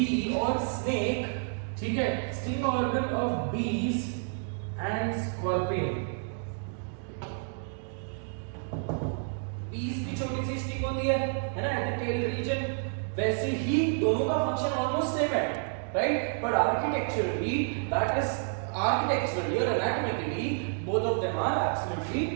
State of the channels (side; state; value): left; silent; 58 dB below the other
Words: or snake. ठीक है. Sting organ of bees and scorpion. bees की छोटी सी स्टिंग होती है ना, एट द टेल रीजन. वैसे ही दोनों का फंक्शन ऑलमोस्ट सेम है, राइट. बट आर्किटेक्चरली और anatomically both of them are absolutely